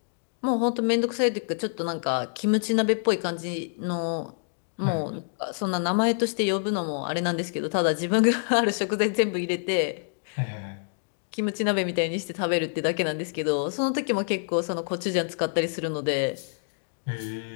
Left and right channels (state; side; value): silent; right; digital silence